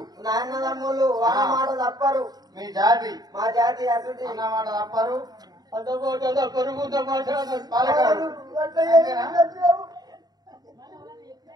నా అన్నదమ్ములు అన్న మాట తప్పరు. మీ జాతి మా జాతి అసలు అన్న మాట తప్పరు.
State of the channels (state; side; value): late; left; 0.19 ms